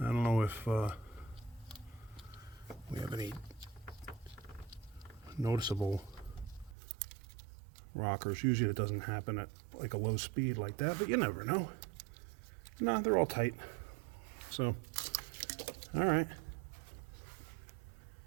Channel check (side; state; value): left; drops out; at 6.8 s